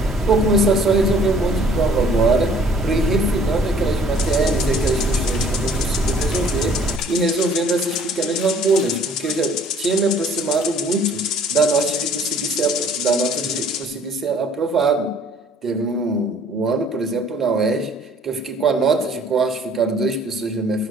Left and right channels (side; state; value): both; normal; correlation 0.56